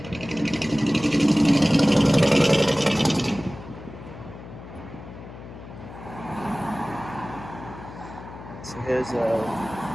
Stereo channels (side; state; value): left; noise; hum, 15 dB below the sound